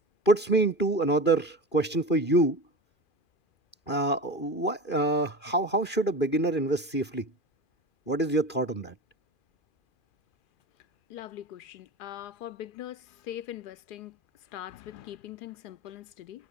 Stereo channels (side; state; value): right; late; 2.4 ms